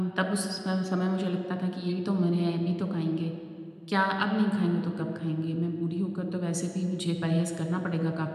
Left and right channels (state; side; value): identical; both; correlation 1.00